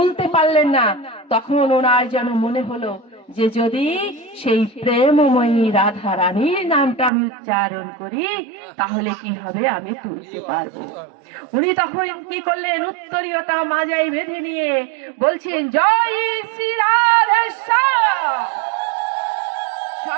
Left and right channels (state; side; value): drops out; left; at 7.1 s